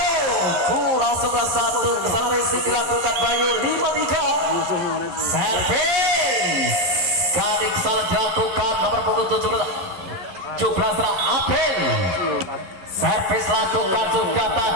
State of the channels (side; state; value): left; late; 11 ms